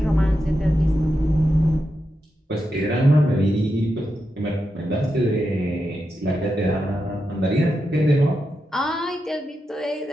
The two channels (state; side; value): normal; both; correlation 0.87